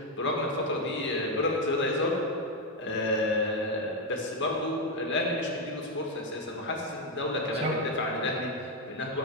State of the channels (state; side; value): normal; both; correlation 0.05